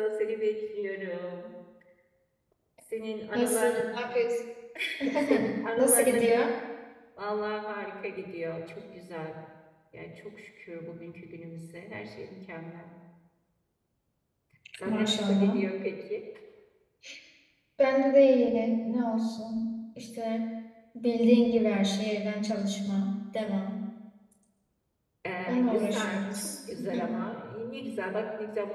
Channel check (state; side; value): identical; both; correlation 1.00